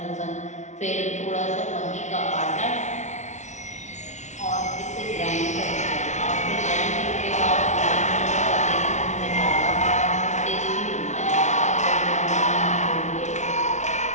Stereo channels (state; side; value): late; right; 0.34 ms